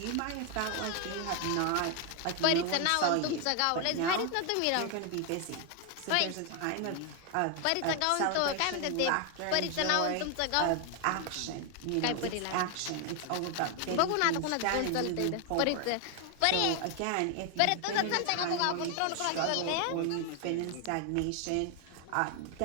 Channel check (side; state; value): both; different; correlation 0.01